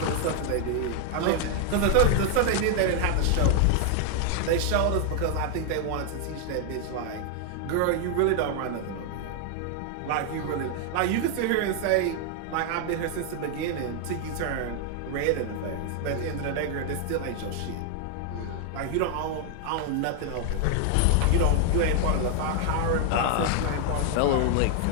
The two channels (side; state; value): both; different; correlation 0.00